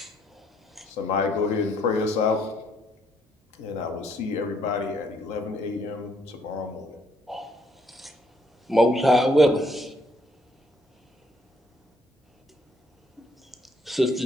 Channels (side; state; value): both; normal; correlation 0.69